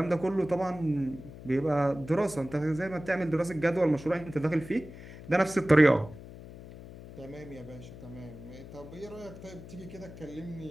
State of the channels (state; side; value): noise; left; hum, 15 dB below the sound